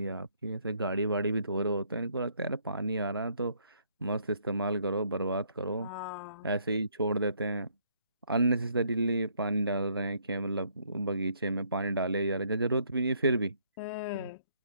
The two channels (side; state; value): both; inverted; correlation -0.68